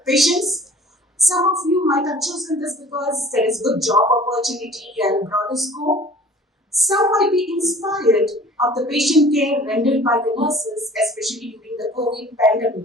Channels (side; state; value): both; normal; correlation 0.47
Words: patients. Some of you might have chosen this because there is good job opportunity and broader scope. Some might be inspired of the patient care rendered by the nurses, especially during the COVID